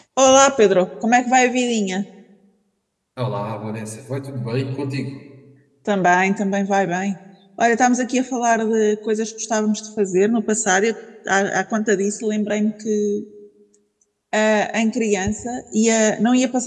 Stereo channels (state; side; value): identical; both; correlation 1.00